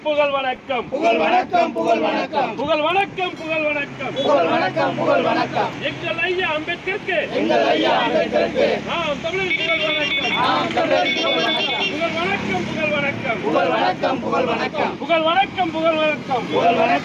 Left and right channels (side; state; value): both; identical; correlation 1.00